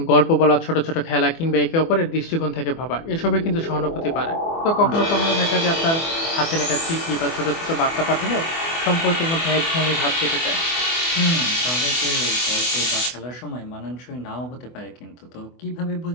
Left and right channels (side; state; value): right; late; 24 ms